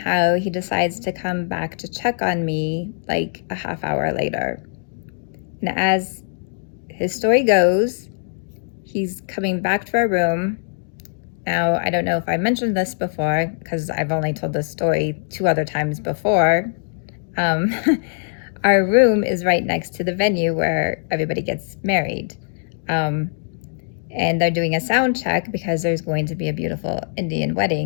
he decides to come back to check on me like a half hour later. And as his story goes, he's coming back to our room. Now, I don't know if I mentioned this before because I've only told this story 2 other times before. Our room is right next to the venue where everybody gets married. And they're doing a sound check because there's going to be a beautiful Indian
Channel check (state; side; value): silent; right; digital silence